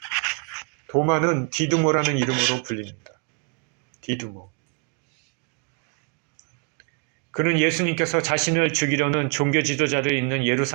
도마는 디두모라는 이름으로 불립니다. 디두모. 그는 예수님께서 자신을 죽이려는 종교 지도자들이 있는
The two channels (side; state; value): left; quieter; 37.1 dB